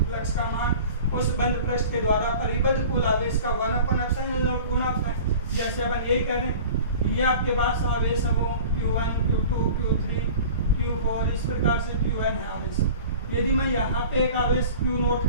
फ्लक्स का मान उस बंद पृष्ठ के द्वारा परिबद्ध कुल आवेश का 1/ε0 गुणा होता है। जैसे अपन यही करें, ये आपके पास आवेश है वो Q1, Q2, Q3, Q4 इस प्रकार से Qn है आवेश। यदि मैं यहाँ पे एक आवेश Q नोट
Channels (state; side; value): inverted; both; correlation -0.41